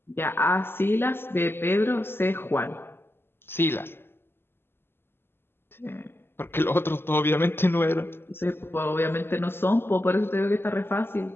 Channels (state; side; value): late; right; 0.11 ms